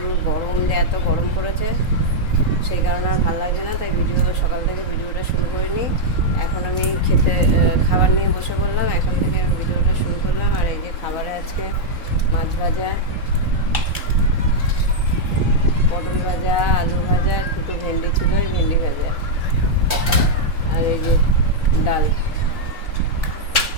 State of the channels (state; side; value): late; right; 3.8 ms